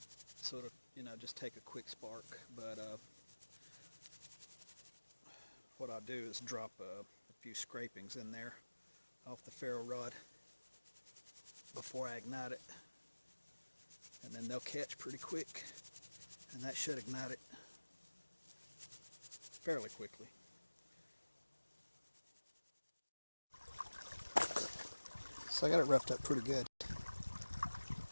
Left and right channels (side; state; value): both; inverted; correlation -1.00